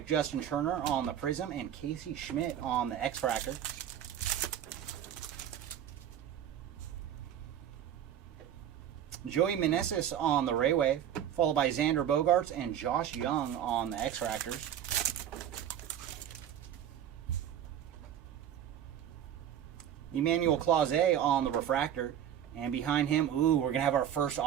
Justin Turner on the Prism and Casey Schmidt on the X-Fractor. Joey Meneses on the Ray Wave, followed by Xander Bogaerts and Josh Young on the X-Fractors. Emmanuel Clase on the Refractor, and behind him, ooh, we're going to have our first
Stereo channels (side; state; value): left; quieter; 10.1 dB